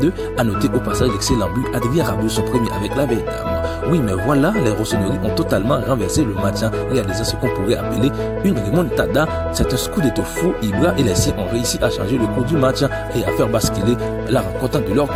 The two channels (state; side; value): identical; both; correlation 1.00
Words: A noter au passage l'excellent but Adrien Rabiot, son premier avec la Vietnam. Oui, mais voilà, les rossonneries ont totalement renversé le match, réalisant ce qu'on pourrait appeler une remontada. C'est un scudetto fou. Ibra et les siens ont réussi à changer le cours du match et à faire basculer la rencontre de leur